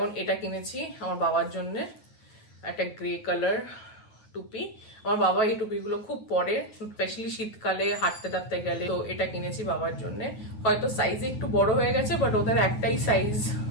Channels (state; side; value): late; right; 9.5 ms